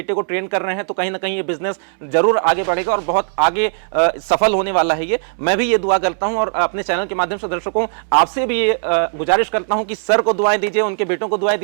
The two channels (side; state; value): left; silent; 67 dB below the other